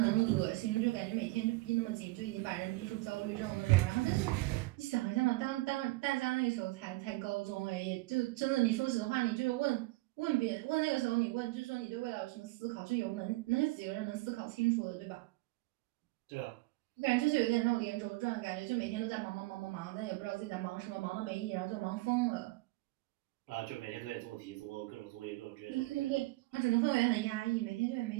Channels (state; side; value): quieter; left; 21.3 dB